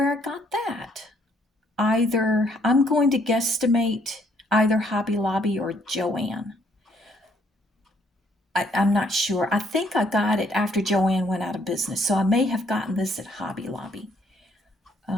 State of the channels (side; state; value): both; normal; correlation 0.67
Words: I got that. Either, I'm going to guesstimate either Hobby Lobby or Joann. I'm not sure. I think I got it after Joann went out of business, so I may have gotten this at Hobby Lobby.